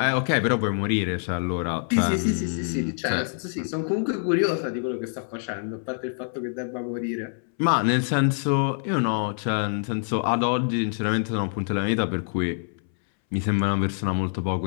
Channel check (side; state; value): right; silent; 61 dB below the other